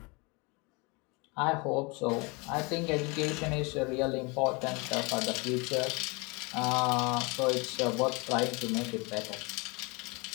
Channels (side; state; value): right; quieter; 28.4 dB